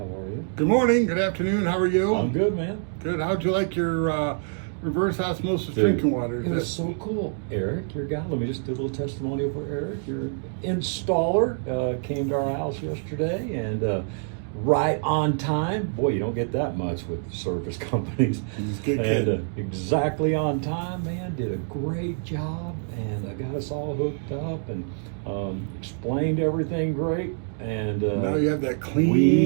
are you? Good morning, good afternoon, how are you? I'm good, man. Good. How'd you like your reverse osmosis Dude, drinking water? It was so cool. Eric, your guy, let me just do a little testimonial for Eric. Your installer came to our house yesterday and right on time. Boy, you don't get that much with service companies. He's a good And kid. exactly on time, man. Did a great job and got us all hooked up and explained everything great. And Now you have that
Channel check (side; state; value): left; silent; 60 dB below the other